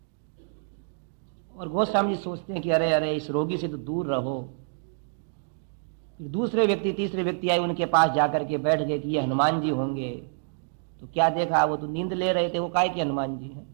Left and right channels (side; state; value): left; silent; digital silence